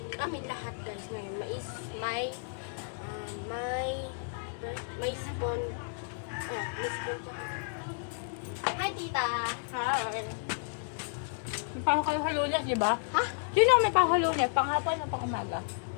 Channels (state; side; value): silent; right; digital silence